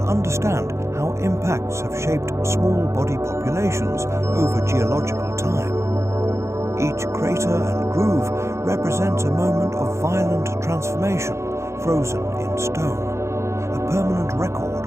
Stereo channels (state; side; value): late; left; 0.14 ms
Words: understand how impacts have shaped small body populations over geological time. Each crater and groove represents a moment of violent transformation, frozen in stone, a permanent record